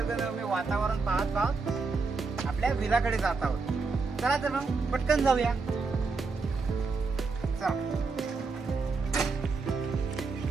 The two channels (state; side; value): quieter; left; 4.3 dB